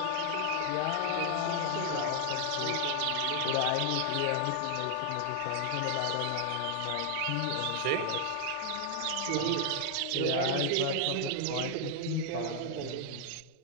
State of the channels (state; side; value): different; both; correlation 0.00